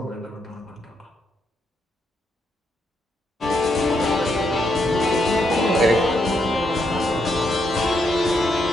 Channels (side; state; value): both; normal; correlation 0.78